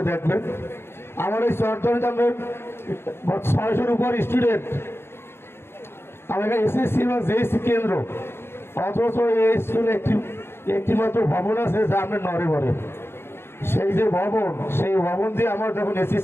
দেখবেন। আমার এই চরদ্বারিতে আমরা 600-র উপর স্টুডেন্ট, আমাদের এসএসসি এবং জেএসসি কেন্দ্র, অথচ এই স্কুলে একটি মাত্র ভবন আছে যা আমরা নড়ে বলে। সেই যে ভবন, সেই ভবন দিয়ে আমার যখন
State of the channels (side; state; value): right; late; 0.11 ms